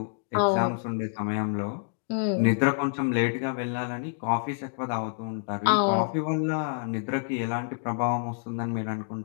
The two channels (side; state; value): right; silent; digital silence